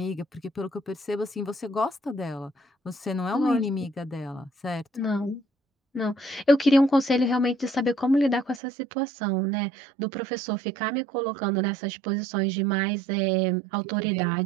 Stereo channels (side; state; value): left; drops out; at 8.6 s